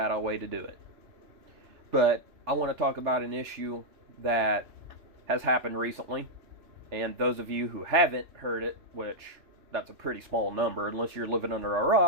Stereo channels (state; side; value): late; left; 3.4 ms